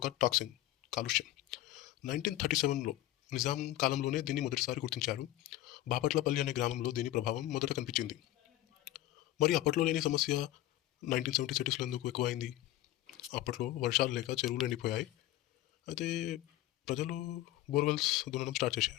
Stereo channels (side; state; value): right; quieter; 14.9 dB